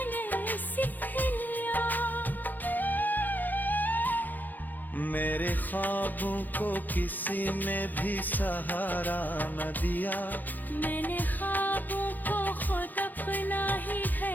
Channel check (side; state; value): right; late; 0.085 ms